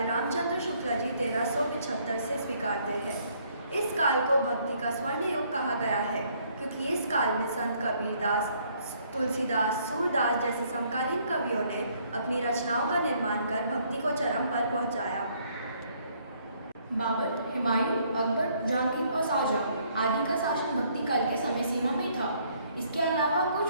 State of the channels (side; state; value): both; inverted; correlation -0.66